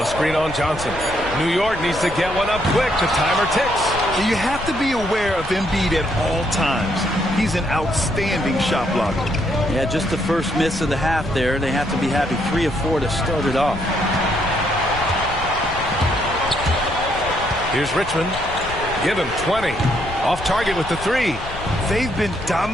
a screen on Johnson. New York needs to get one up quick. The timer ticks. You have to be aware of Embiid at all times. He's an outstanding shot blocker. Yeah, just the first miss of the half there. They have to be happy 3 of 4 to start it off. Here's Richmond. Give him 20. Off target with the 3. They've been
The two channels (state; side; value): noise; left; rumble, 11 dB below the sound